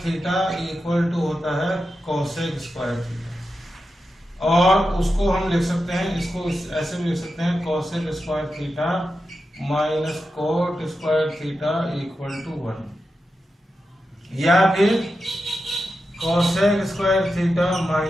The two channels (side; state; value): both; normal; correlation 0.90